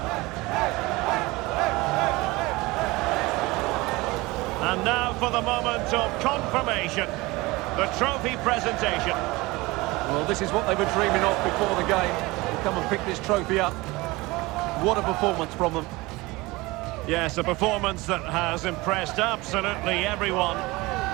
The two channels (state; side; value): quieter; left; 21.9 dB